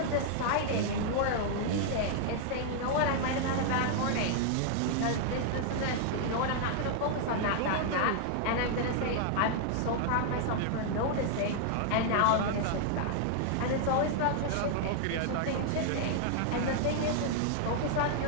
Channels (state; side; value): different; both; correlation 0.00